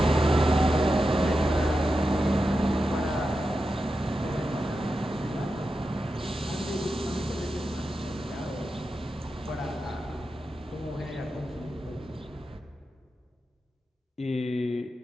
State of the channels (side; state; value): both; normal; correlation 0.90